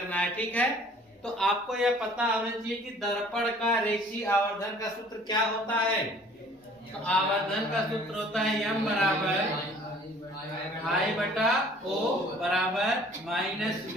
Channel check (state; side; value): normal; both; correlation 0.53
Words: है। ठीक है, तो आपको यह पता होना चाहिए कि दर्पण का रेखीय आवर्धन का सूत्र क्या होता है। तो आवर्धन का सूत्र होता है m बराबर I बटा O बराबर माइनस